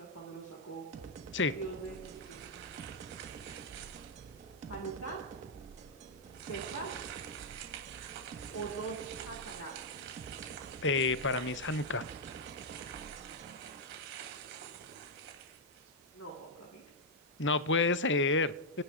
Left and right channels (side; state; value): both; normal; correlation -0.03